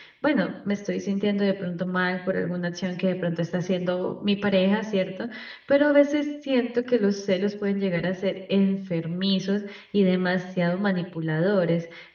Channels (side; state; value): both; identical; correlation 1.00